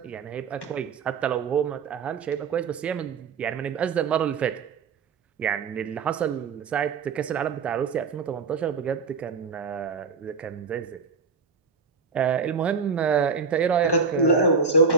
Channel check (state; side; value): quieter; left; 5.1 dB